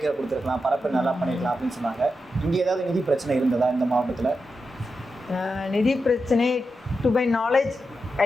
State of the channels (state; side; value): normal; both; correlation 0.88